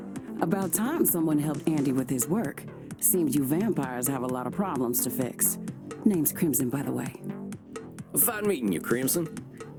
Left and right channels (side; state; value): both; identical; correlation 1.00